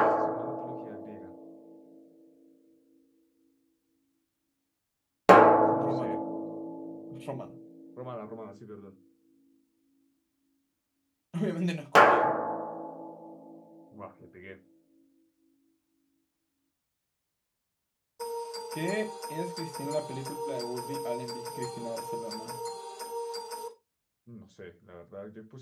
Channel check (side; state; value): both; identical; correlation 1.00